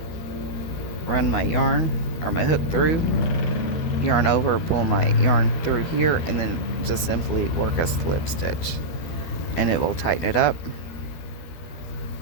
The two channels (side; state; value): right; late; 12 ms